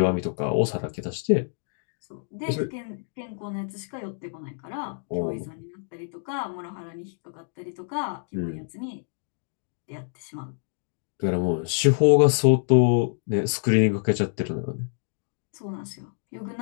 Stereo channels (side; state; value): right; silent; digital silence